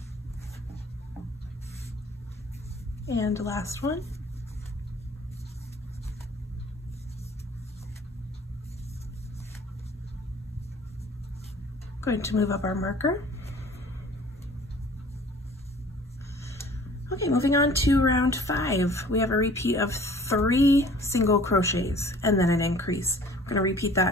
and last one. Going to move up our marker. Okay, moving on to round 5. We have a repeat of 3 single crochets and then an increase. We're going to repeat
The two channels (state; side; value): normal; both; correlation 0.50